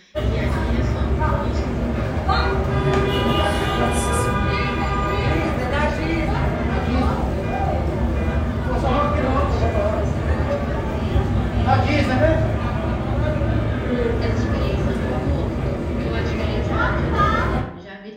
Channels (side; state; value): both; identical; correlation 1.00